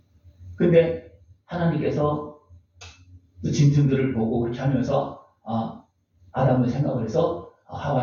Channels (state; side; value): identical; both; correlation 1.00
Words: 근데 하나님께서 그 짐승들을 보고 그렇게 하면서 아담을 생각을 해서